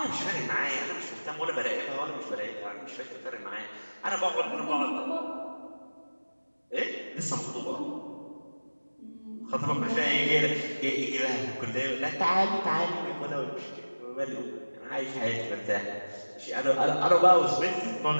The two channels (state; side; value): inverted; both; correlation -1.00